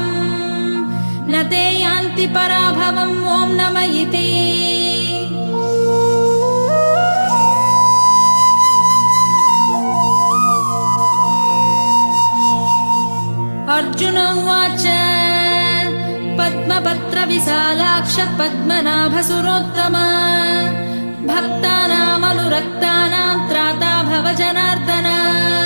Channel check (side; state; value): both; inverted; correlation -1.00